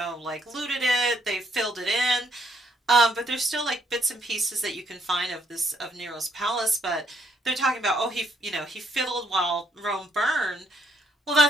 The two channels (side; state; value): both; normal; correlation 0.71